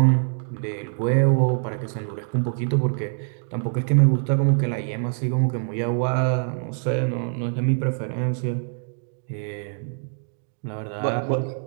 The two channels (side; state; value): left; silent; digital silence